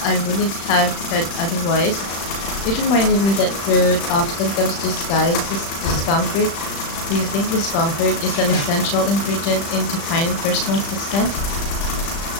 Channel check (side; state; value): right; late; 36 ms